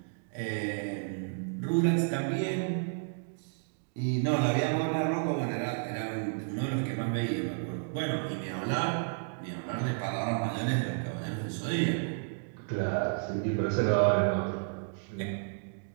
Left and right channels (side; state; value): left; silent; digital silence